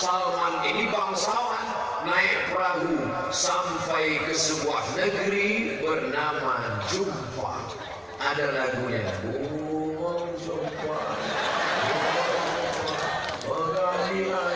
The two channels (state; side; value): identical; both; correlation 1.00